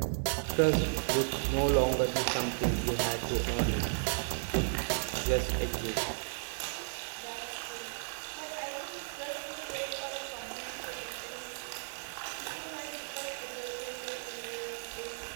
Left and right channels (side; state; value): left; silent; digital silence